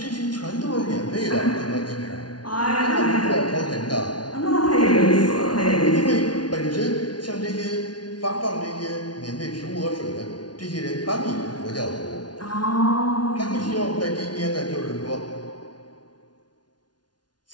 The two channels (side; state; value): right; late; 0.69 ms